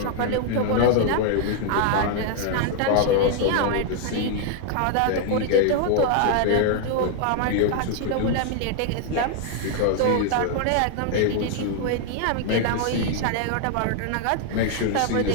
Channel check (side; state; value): both; different; correlation 0.00